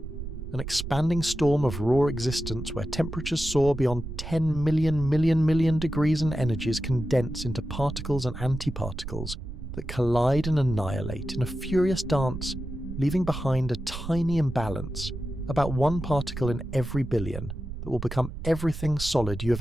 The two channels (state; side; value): noise; right; rumble, 8 dB below the sound